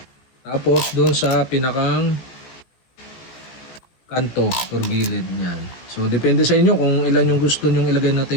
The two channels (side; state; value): right; late; 17 ms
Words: Tapos doon sa pinakang kanto or gilid niyan. So depende sa inyo kung ilan yung gusto nyong ilagay na